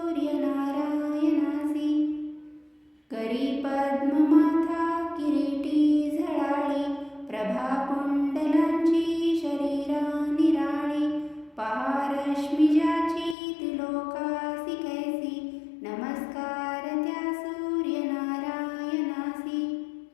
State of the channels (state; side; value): drops out; right; at 13.4 s